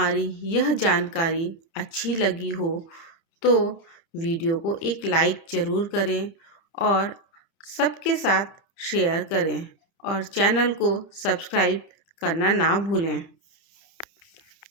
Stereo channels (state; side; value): late; right; 30 ms